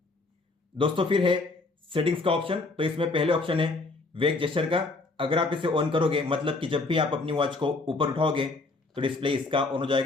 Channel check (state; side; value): quieter; right; 3.5 dB